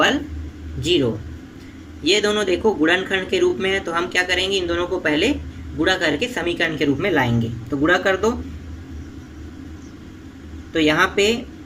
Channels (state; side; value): identical; both; correlation 1.00